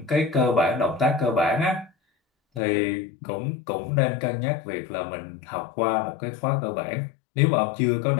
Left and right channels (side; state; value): right; drops out; at 2.6 s